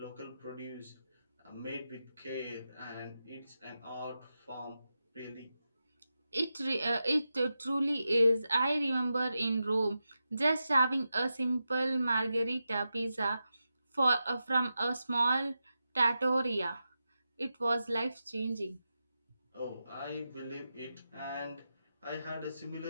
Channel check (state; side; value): inverted; both; correlation -0.90